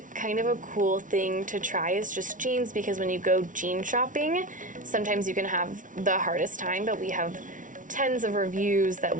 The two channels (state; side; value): late; left; 0.38 ms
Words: kind of a cool thing to try is just jeans, because when you go jean shopping, sometimes you can have the hardest time, but we have tons of reviews that